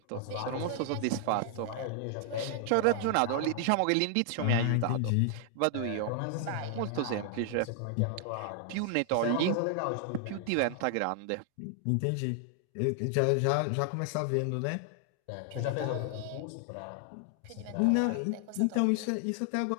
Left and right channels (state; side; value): different; both; correlation 0.00